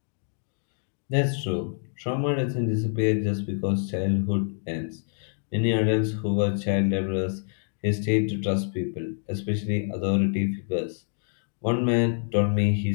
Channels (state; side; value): silent; right; 60 dB below the other